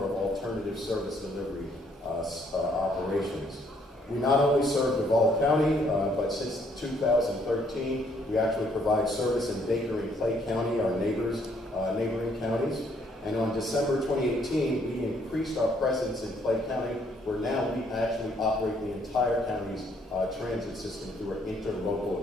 of alternative service delivery operations. We not only serve Duval County, but since 2013, we actually provide service in Baker and Clay County, our neighboring counties. And on December 2018, we increased our presence in Clay County, where now we actually operate the entire county's transit system through an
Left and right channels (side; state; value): both; normal; correlation 0.67